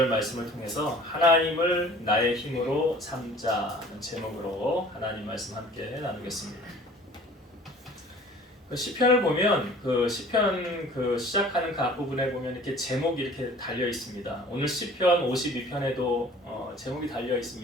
말씀을 통해서 하나님을 나의 힘으로 삼자는 제목으로 하나님 말씀 함께 나누겠습니다. 시편을 보면 시편 시작하는 그 앞부분에 보면 이렇게 제목이 이렇게 달려 있습니다. 오늘 시편 52편에도 제목이 달려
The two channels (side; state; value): both; normal; correlation 0.48